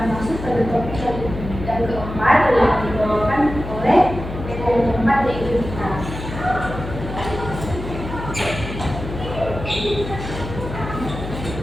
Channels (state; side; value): noise; left; hum, 8 dB below the sound